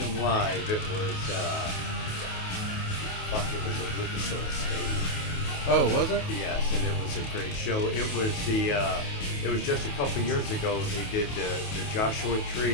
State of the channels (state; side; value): late; right; 28 ms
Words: live, it was, it was at Lucas Oil Stadium. Oh, was it? Yes, and it was a great show. It was it was just a couple years ago they did the Joshua